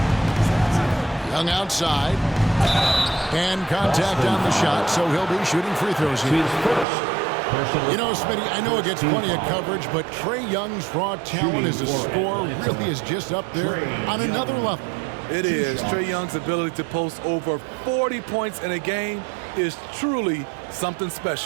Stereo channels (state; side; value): drops out; left; at 6.9 s